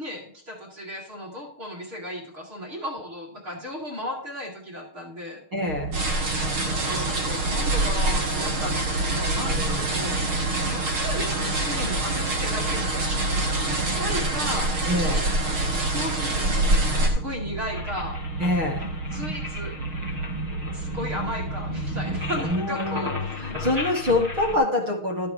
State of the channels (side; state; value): left; late; 6.5 ms